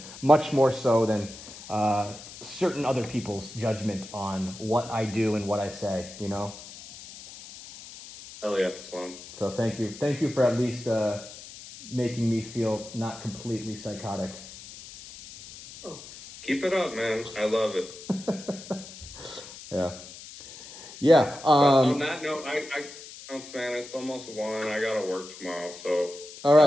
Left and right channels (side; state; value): left; noise; hiss, 15 dB below the sound